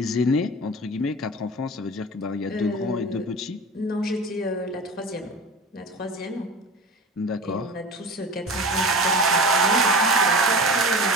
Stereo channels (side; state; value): both; normal; correlation 0.34